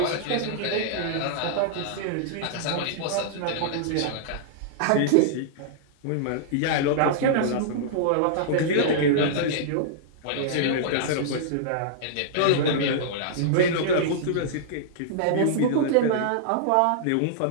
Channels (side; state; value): both; different; correlation -0.02